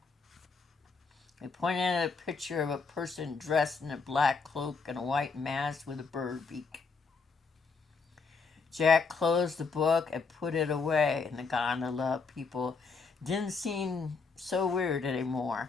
He pointed at a picture of a person dressed in a black cloak and a white mask with a bird beak. Jack closed the book and put it away in the gondola. People didn't seem so weird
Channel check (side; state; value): right; quieter; 4.7 dB